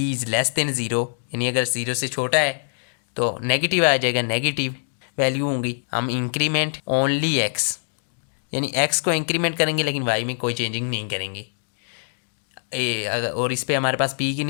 इज़ लेस देन 0, यानी अगर 0 से छोटा है तो नेगेटिव आ जाएगा, नेगेटिव वैल्यू होंगी। हम इंक्रीमेंट ओनली x यानी x को इंक्रीमेंट करेंगे लेकिन y में कोई चेंजिंग नहीं करेंगे। और इस पर हमारे पास p की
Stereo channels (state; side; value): silent; right; digital silence